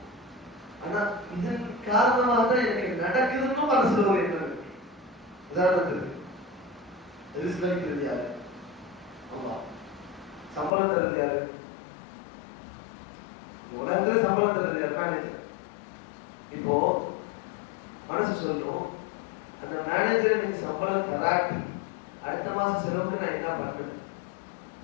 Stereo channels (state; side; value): drops out; right; at 10.8 s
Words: ஆனா இதன் காரணமாக தான் எனக்கு நடக்குதுன்னு மனசுல ஒரு எண்ணம் இருக்கு. உதாரணத்துக்கு ரிஸ்க் அளிக்கிறது யாரு? அல்லாஹ். சம்பளம் தர்றது யாரு? உலகத்துல சம்பளம் தர்றது யாரு? மேனேஜர். இப்போ மனசு சொல்லணும், அந்த மேனேஜர் எனக்கு சம்பளம் தராட்டி அடுத்த மாசம் செலவுக்கு நான் என்ன பண்றது?